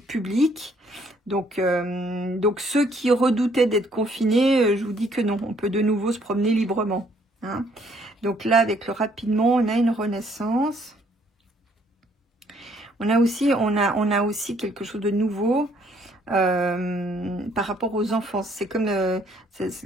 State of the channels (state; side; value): normal; both; correlation 0.65